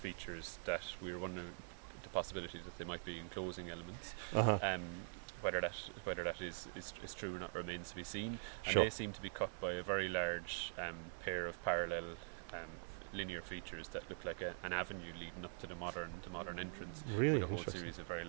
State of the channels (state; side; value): silent; left; digital silence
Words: that we're wondering the possibility that they might be enclosing elements. whether that is true or not remains to be seen. And Sure. they seem to be cut by a very large pair of parallel linear features that look like an avenue leading up to the modern entrance, Really with a whole interesting. series of very